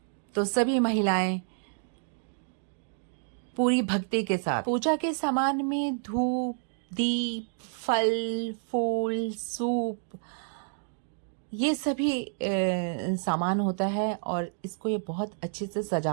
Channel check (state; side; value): silent; left; digital silence